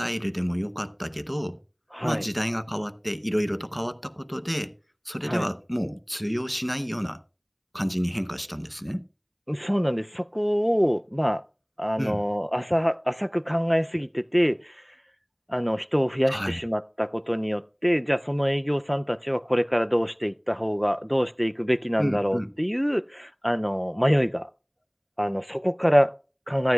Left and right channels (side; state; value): both; identical; correlation 1.00